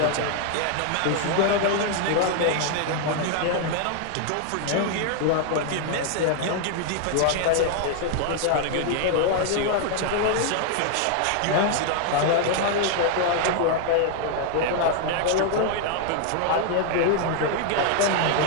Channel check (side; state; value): both; different; correlation 0.00